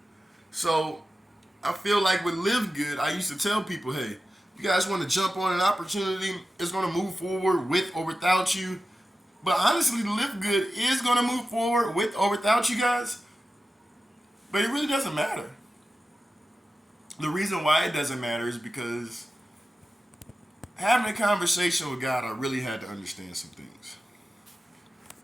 So I feel like with LiveGood, I used to tell people, hey, you guys want to jump on an opportunity, it's going to move forward with or without you. But honestly, LiveGood is going to move forward with or without you guys. But it really doesn't matter. The reason why it doesn't matter is because having a conversation with God, I really had to understand some things.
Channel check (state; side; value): normal; both; correlation 0.93